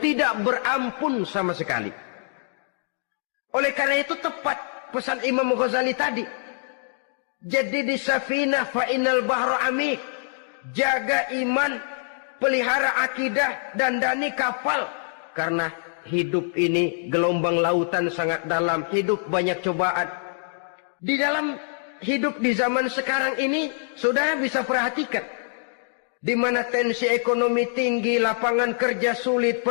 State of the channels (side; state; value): right; silent; digital silence